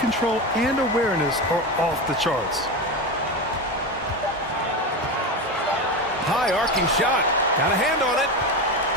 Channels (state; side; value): normal; both; correlation 0.20